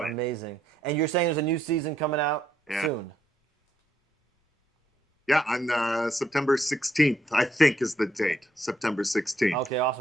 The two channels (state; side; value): normal; both; correlation 0.74